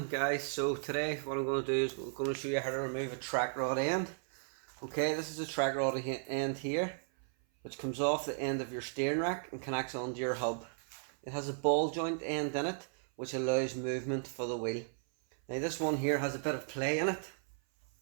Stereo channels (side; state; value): left; silent; 54 dB below the other